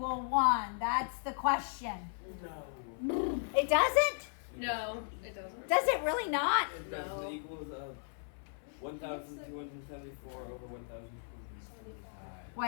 1? That's the question. No. It doesn't? No, it doesn't. Does it really not? It No. does. It equals 1,274 over 1,275.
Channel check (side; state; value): right; silent; 54 dB below the other